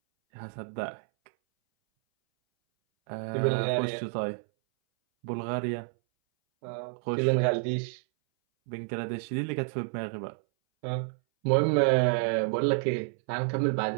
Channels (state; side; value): silent; left; 58 dB below the other